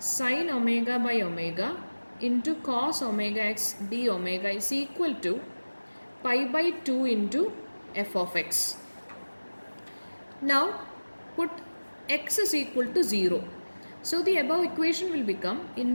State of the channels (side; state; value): both; inverted; correlation -1.00